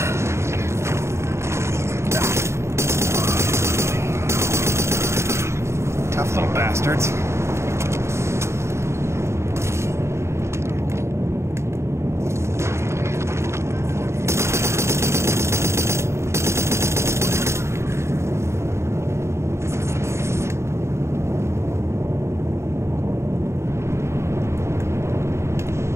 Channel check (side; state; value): left; late; 0.13 ms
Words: Tough little bastards.